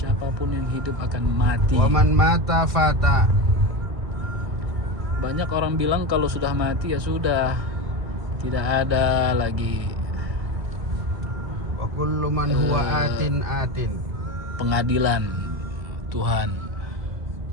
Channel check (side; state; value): left; late; 1.9 ms